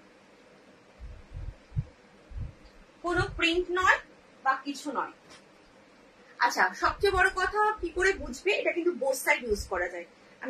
কোনো প্রিন্ট নয় বা কিছু নয়। আচ্ছা, সবচেয়ে বড় কথা কি করে বুঝবে এটা কিন্তু বোথ সাইড ইউজ করা যায়।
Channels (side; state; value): both; identical; correlation 1.00